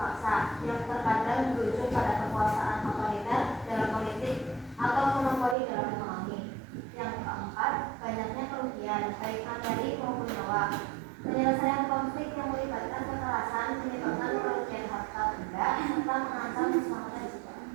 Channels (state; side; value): drops out; left; at 5.6 s